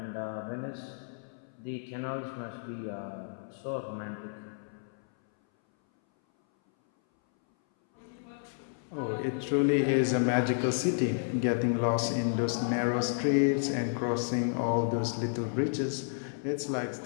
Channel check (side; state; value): right; silent; 57 dB below the other